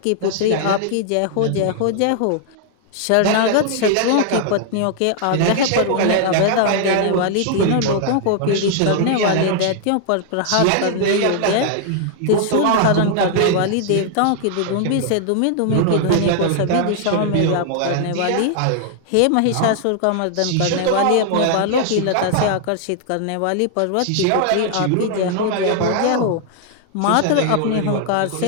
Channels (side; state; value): both; different; correlation 0.00